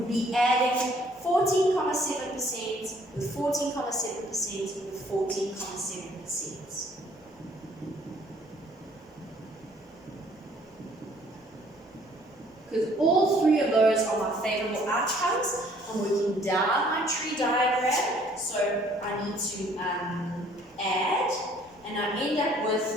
be adding 14.7% with 14.7% with 14.7%. Because all three of those are my favorable outcomes. I'm working down my tree diagram, so I need to add, and I end up with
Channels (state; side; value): normal; both; correlation 0.60